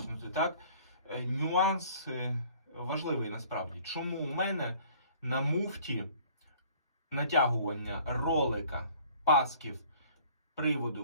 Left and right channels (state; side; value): inverted; both; correlation -0.53